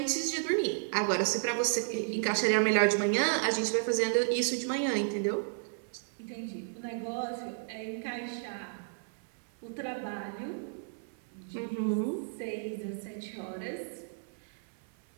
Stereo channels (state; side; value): silent; left; 56 dB below the other